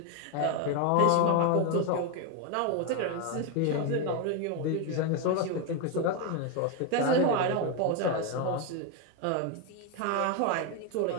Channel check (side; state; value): both; different; correlation 0.02